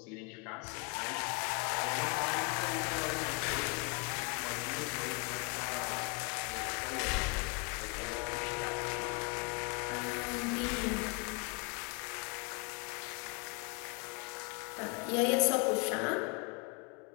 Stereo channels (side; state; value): right; quieter; 31.3 dB